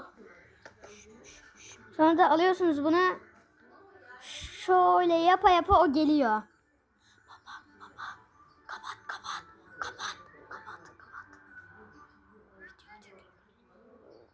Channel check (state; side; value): identical; both; correlation 1.00